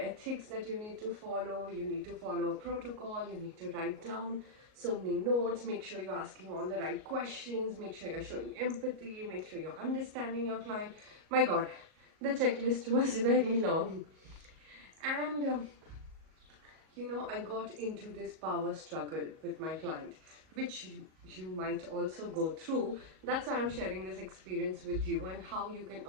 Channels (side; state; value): left; late; 38 ms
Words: ethics that you need to follow. You need to follow a protocol, you need to write down so many notes, make sure you're asking all the right questions, make sure you're showing empathy, make sure you're understanding your client. My God, the checklist was very long. And I got into this power struggle with my client, which you might also go through. That's why I'm sharing this experience with you and how you can